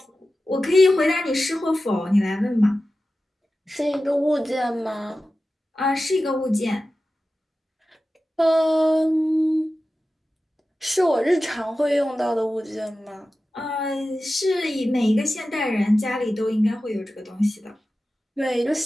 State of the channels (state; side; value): normal; both; correlation 0.94